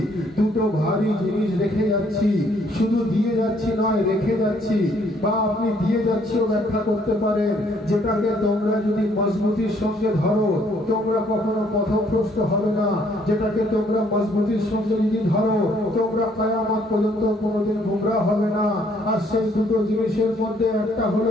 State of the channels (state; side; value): normal; both; correlation 0.65